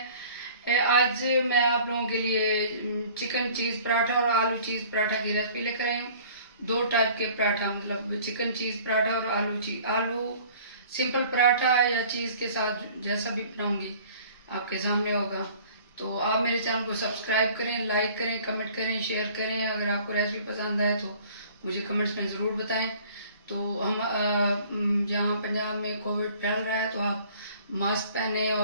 आज मैं आप लोगों के लिए चिकन चीज पराठा और आलू चीज पराठा की रेसिपी लेकर आई हूँ। दो टाइप के पराठा, मतलब चिकन चीज पराठा और आलू सिंपल पराठा या चीज के साथ जैसा भी बनाऊंगी आपके सामने होगा। तो आप मेरे चैनल को सब्सक्राइब करें, लाइक करें, कमेंट करें, शेयर करें। अगर आपको रेसिपी पसंद आए तो मुझे कमेंट्स में ज़रूर बताएं। तो हम यहाँ पंजाब में कोविड फैल रहा है, तो आप मास्क पहने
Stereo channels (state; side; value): inverted; both; correlation -0.50